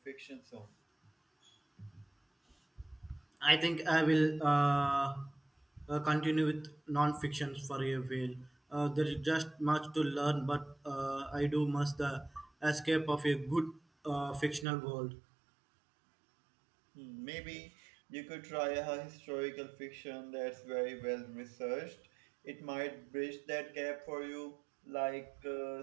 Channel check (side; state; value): left; drops out; at 14.7 s